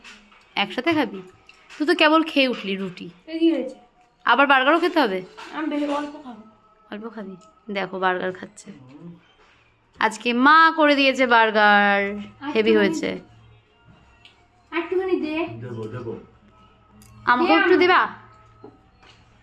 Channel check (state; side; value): identical; both; correlation 1.00